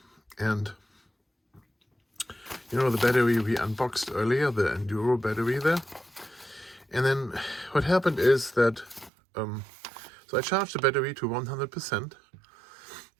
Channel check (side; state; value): left; drops out; at 9.1 s